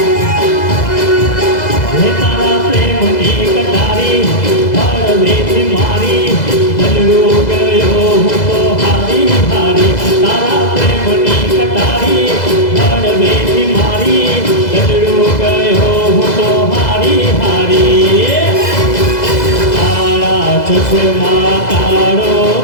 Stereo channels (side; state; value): right; late; 2.0 ms